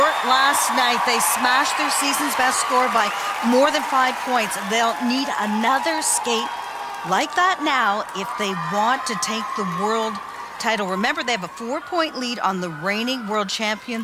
last night. They smashed their season's best score by more than 5 points. They'll need another skate like that now if they want to take the world title. Remember, they have a 4-point lead on the reigning world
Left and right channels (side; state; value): both; identical; correlation 1.00